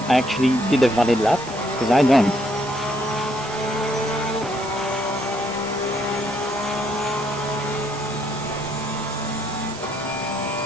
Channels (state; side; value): noise; right; hiss, 15 dB below the sound